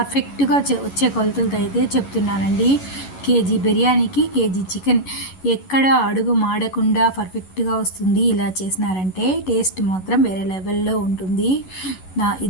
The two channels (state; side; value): late; right; 11 ms